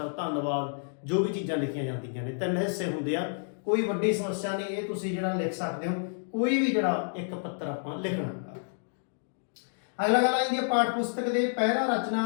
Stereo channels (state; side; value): silent; right; digital silence